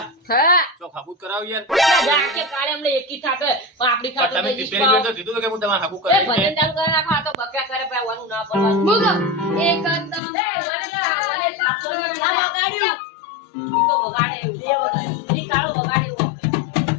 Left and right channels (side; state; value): right; drops out; at 10.2 s